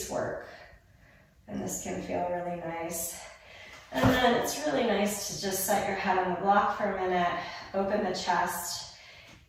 work. And this can feel really nice. And then it's really nice to just set your head on the block for a minute, open the chest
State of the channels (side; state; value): both; identical; correlation 1.00